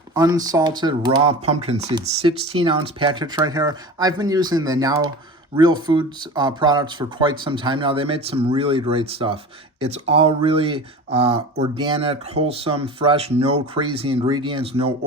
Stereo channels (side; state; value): both; normal; correlation 0.34